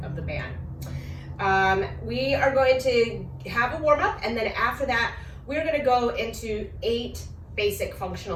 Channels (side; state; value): both; identical; correlation 1.00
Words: of the band. We are going to have a warm up, and then after that, we're going to go into 8 basic